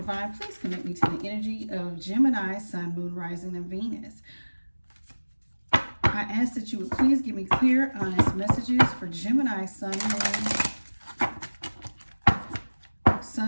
please connect me to the energy of Gemini, Sun, Moon, Rising, and Venus. I ask that you would please give me clear, honest messages for Gemini, Sun,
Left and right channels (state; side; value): inverted; both; correlation -1.00